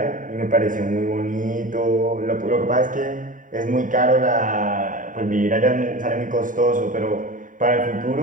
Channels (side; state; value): left; late; 0.38 ms